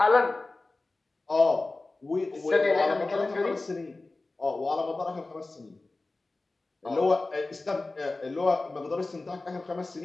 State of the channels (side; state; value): right; quieter; 3.2 dB